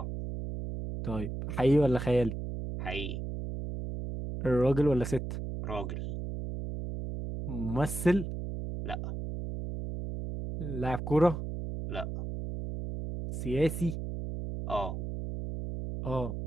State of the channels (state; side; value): noise; right; hum, 5 dB below the sound